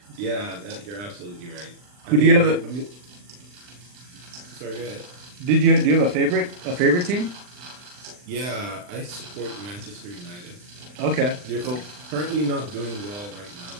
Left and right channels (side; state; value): left; late; 39 ms